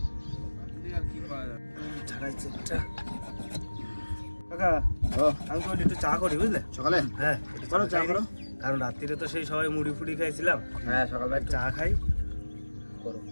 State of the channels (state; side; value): inverted; both; correlation -1.00